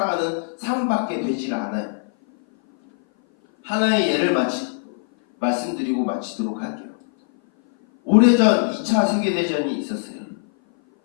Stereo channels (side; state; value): right; silent; 57 dB below the other